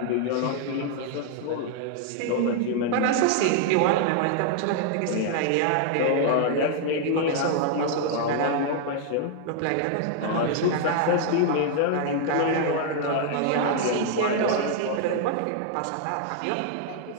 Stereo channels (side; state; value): both; different; correlation 0.00